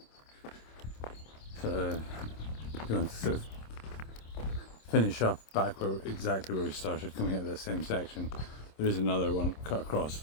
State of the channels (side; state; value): right; late; 26 ms